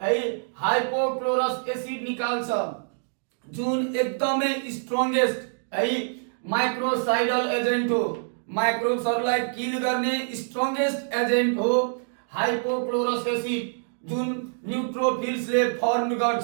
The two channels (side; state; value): left; silent; digital silence